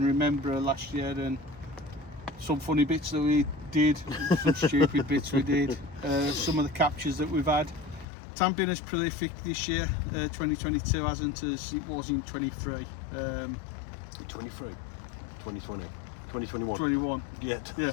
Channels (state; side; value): drops out; right; at 8.1 s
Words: remember last year and some funny bits that we did, some stupid bits we did, some of the captures that we've had. It hasn't been as prolific this year, 2022 hasn't as it was in 23. 23, 2020, 2021. 21. Yeah, Yeah.